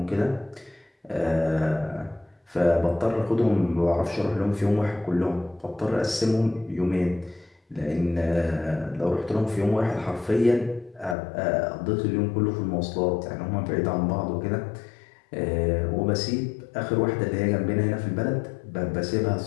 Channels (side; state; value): right; drops out; at 11.2 s